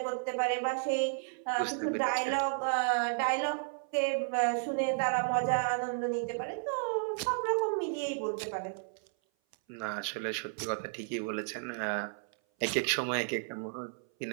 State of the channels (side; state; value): left; silent; 56 dB below the other